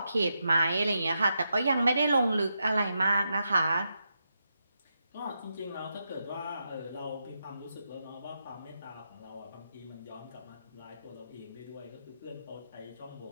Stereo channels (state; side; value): inverted; both; correlation -0.84